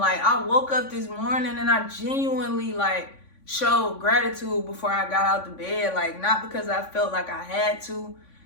I woke up this morning and I genuinely like showed gratitude before I got out the bed. Like, not because I felt like I had to,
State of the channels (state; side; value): late; right; 3.5 ms